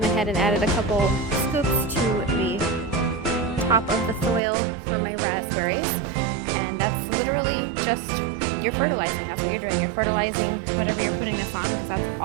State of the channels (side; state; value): left; drops out; at 4.4 s